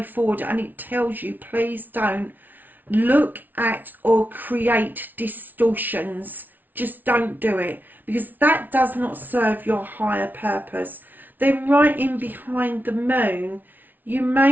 forward, and it tells you, please don't look at or create distortions. Just don't do it, because that does not serve your higher purpose. Then right in behind the Moon, you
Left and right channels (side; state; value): left; late; 0.084 ms